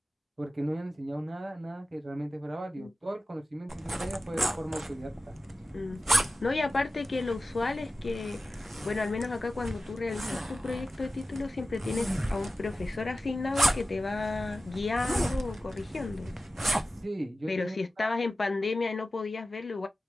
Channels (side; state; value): both; normal; correlation 0.95